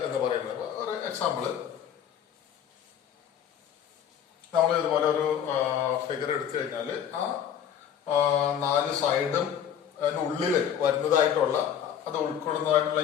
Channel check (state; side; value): quieter; right; 9.1 dB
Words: എന്ന് പറയുന്നത്. ഒരു എക്സാമ്പിള്, നമ്മൾ ഇതുപോലെ ഒരു ഫിഗർ എടുത്തു കഴിഞ്ഞാൽ ആ 4 സൈഡും അതിനുള്ളിൽ വരുന്നതായിട്ടുള്ള, അത് ഉൾക്കൊള്ളുന്നതായിട്ടുള്ള